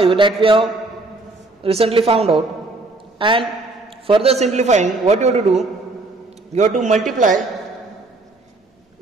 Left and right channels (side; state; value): left; quieter; 3.2 dB